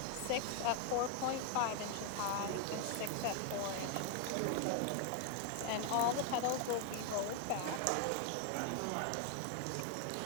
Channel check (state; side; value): different; both; correlation 0.00